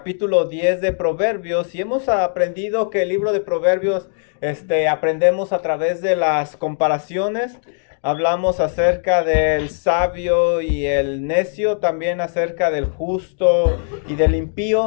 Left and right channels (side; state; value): right; silent; digital silence